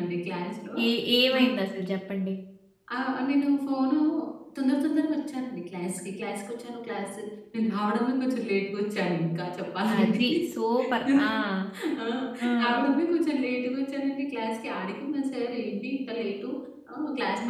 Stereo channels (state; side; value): identical; both; correlation 1.00